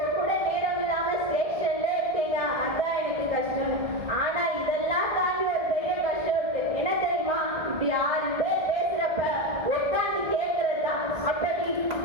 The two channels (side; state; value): left; late; 1.7 ms